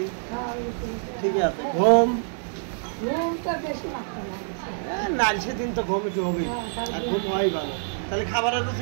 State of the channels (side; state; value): left; silent; digital silence